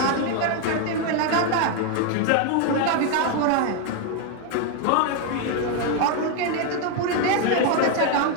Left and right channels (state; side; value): different; both; correlation 0.01